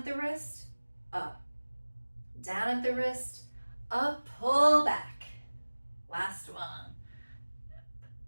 the wrist, up, down at the wrist, up, pull back. Last one. Up,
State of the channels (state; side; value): inverted; both; correlation -1.00